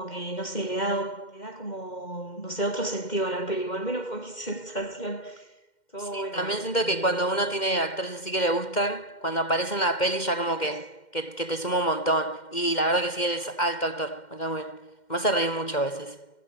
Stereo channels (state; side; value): late; right; 2.1 ms